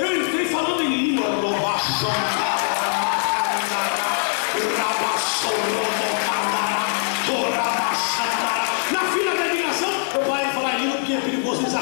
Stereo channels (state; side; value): silent; right; digital silence